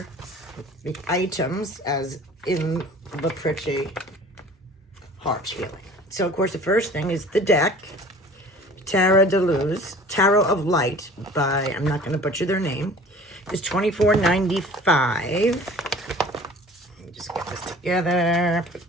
the items as in the pretty heart healing. So, of course, the first thing is the deck, Tarot de Luz, Tarot of Light by, I'm not going to butcher their name, is $24.95. Just get this together, put it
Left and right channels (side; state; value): both; normal; correlation 0.46